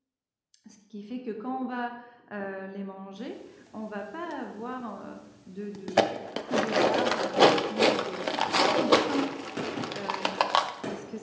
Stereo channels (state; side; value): identical; both; correlation 1.00